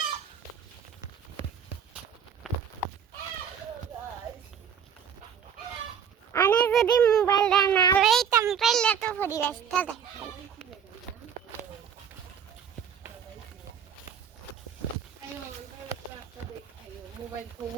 আমি যদি মোবাইলটা না লইতাম তাহলে তো পরিবেশটা দেখাই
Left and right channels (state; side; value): quieter; left; 7.9 dB